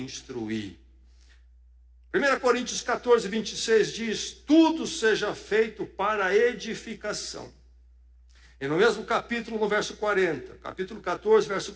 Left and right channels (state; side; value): identical; both; correlation 1.00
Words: 1 Coríntios 14, 26 diz, tudo seja feito para a edificação. E no mesmo capítulo, no verso 40, capítulo 14, verso